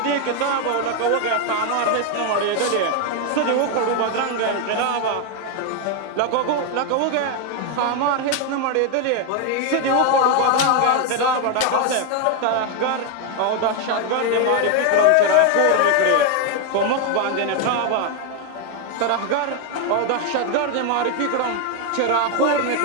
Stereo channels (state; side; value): different; both; correlation 0.01